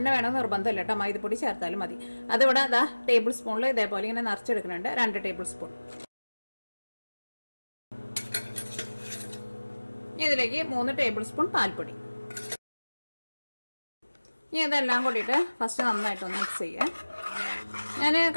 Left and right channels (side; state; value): both; inverted; correlation -1.00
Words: വേണമെന്ന് നിർബന്ധമില്ല കേട്ടോ, മൈദപ്പൊടി ചേർത്താലും മതി. അതിവിടെ ടേബിൾ സ്പൂണിൽ ഇതേപോലെ ഇങ്ങനെ നിറച്ചെടുക്കുന്നുണ്ട്, 2 ടേബിൾ സ്പൂൺ. ഇതിലേക്ക് 3 ടേബിൾ സ്പൂൺ പാൽപ്പൊടി. ഇനി ഇതെല്ലാം കൂടിയിട്ട് ഫസ്റ്റ് നന്നായിട്ടൊന്ന് മിക്സ് ചെയ്യുക. ഞാൻ